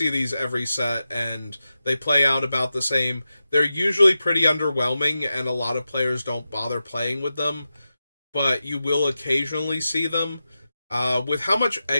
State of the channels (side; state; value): both; inverted; correlation -0.91